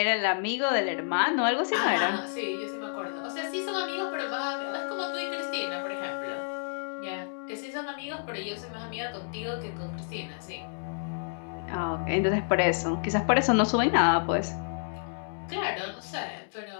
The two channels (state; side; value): silent; right; digital silence